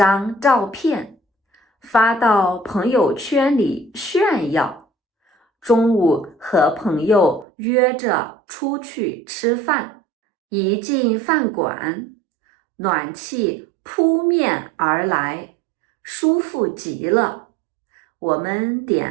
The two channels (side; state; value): left; drops out; at 7.5 s